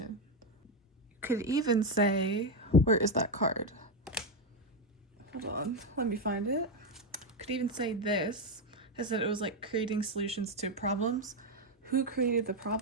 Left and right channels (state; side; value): normal; both; correlation 0.07